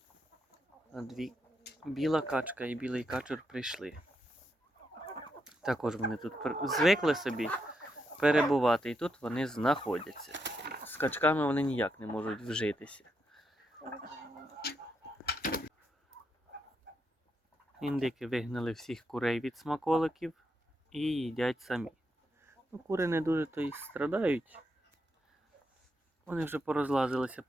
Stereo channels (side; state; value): both; normal; correlation 0.82